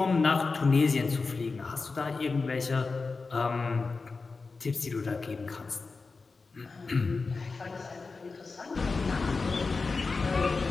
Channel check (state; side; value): quieter; right; 4.2 dB